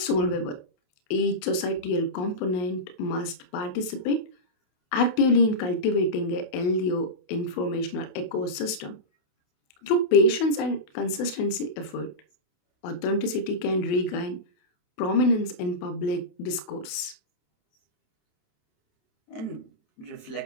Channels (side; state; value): right; late; 28 ms